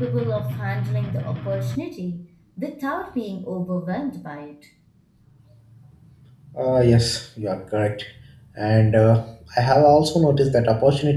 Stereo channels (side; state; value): both; identical; correlation 1.00